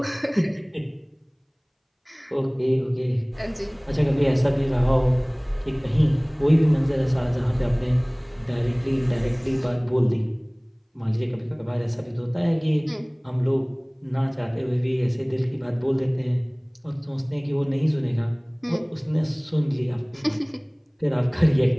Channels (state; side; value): identical; both; correlation 1.00